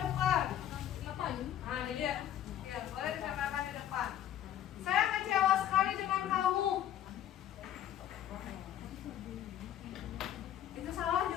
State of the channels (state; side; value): quieter; right; 11.3 dB